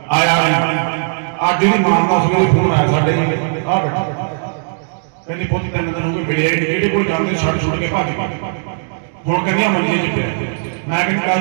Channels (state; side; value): silent; left; digital silence